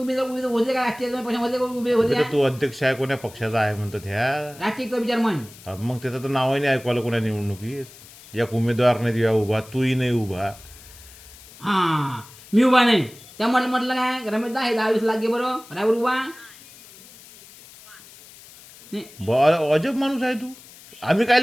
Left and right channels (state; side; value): noise; left; hiss, 21 dB below the sound